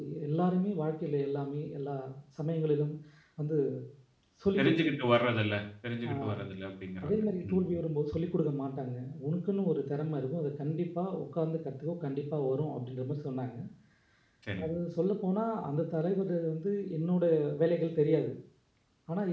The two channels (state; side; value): identical; both; correlation 1.00